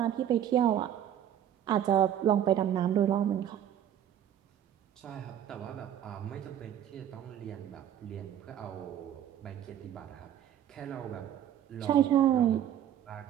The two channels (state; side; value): quieter; left; 10.5 dB